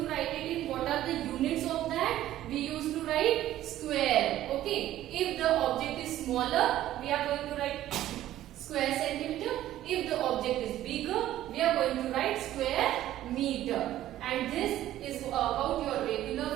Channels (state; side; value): quieter; left; 13.4 dB